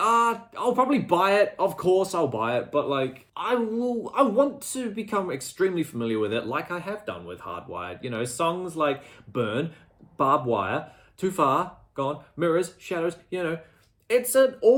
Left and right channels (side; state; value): both; identical; correlation 1.00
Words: probably buy it. Of course I'll buy it, but like I want to become extremely familiar with it like I have done with Hardwired. You know, songs like Burn, Barbed Wire, Too Far, Gone, Mirrors, Shadows, you know, it's an